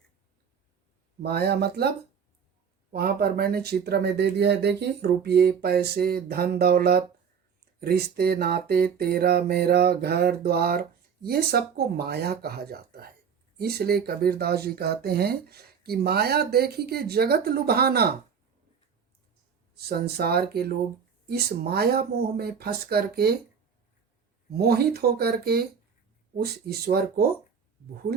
माया मतलब वहाँ पर मैंने चित्र में दे दिया है, देखिए, रुपये, पैसे, धन दौलत, रिश्ते नाते, तेरा मेरा, घर द्वार, ये सबको माया कहा जाता है। इसलिए कबीरदास जी कहते हैं कि माया देखी के जगत लुभाना। संसार के लोग इस माया मोह में फंस करके, मोहित होकर के उस ईश्वर को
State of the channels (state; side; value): quieter; left; 6.9 dB